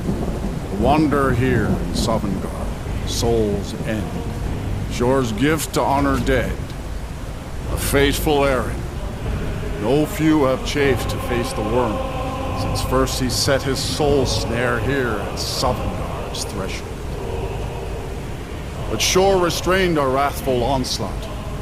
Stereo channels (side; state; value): both; identical; correlation 1.00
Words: Wander here in Sovngarde, Soul's End. Shor's gift to honor dead. A fateful errand. No few have chafed to face the worm, since first he set his soul snare here at Sovngarde's threshold. But Shor restrained our wrathful onslaught.